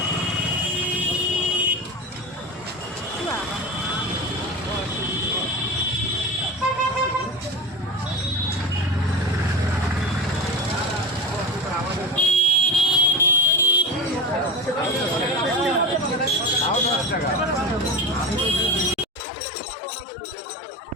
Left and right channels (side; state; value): both; normal; correlation 0.27